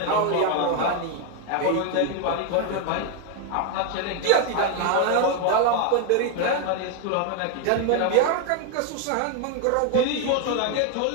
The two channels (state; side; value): different; both; correlation 0.01